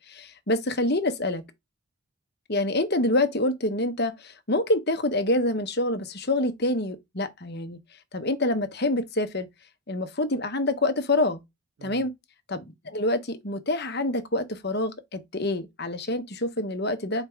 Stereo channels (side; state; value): both; normal; correlation -0.05